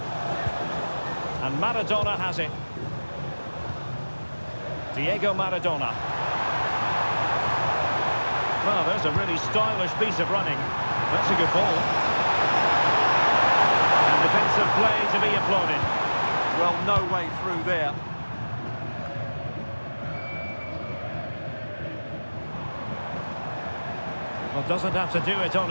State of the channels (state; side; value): inverted; both; correlation -1.00